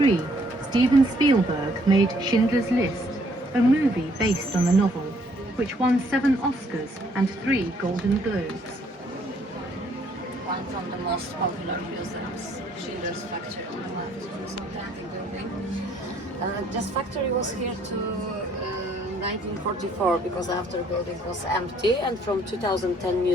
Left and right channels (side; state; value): both; normal; correlation 0.65